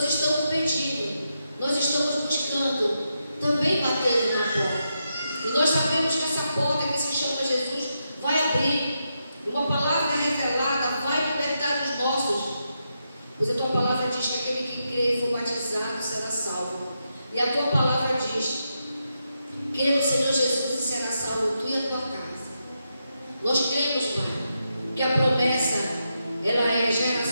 estamos pedindo, nós estamos buscando, também batendo na porta. E nós sabemos que essa porta que se chama Jesus vai abrir. E uma palavra revelada vai libertar os nossos. Pois a tua palavra diz que aquele que crê e for batizado será salvo. E a tua palavra diz: crê no Senhor Jesus e será salvo tu e a tua casa. Nós cremos, Pai, que a promessa ela é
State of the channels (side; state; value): both; inverted; correlation -0.84